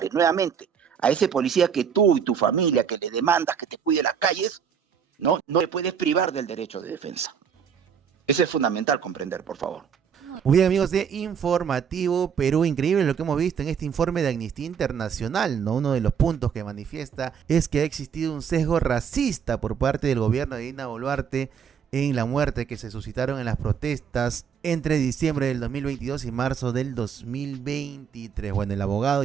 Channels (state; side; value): quieter; left; 7.3 dB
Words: Nuevamente, a ese policía que tú y tu familia, que le demandas que te cuide las calles, no le puedes privar del derecho de defensa. Eso es fundamental comprender, por favor. Muy bien, amigos de Informativo Perú, increíble lo que hemos visto en este informe de Amnistía Internacional, ¿no? Uno de los puntos que manifiesta es que ha existido un sesgo racista por parte del gobierno de Dina Boluarte en la muerte que se suscitaron en las protestas entre diciembre del 2022 y marzo del 2023. Bueno, el abogado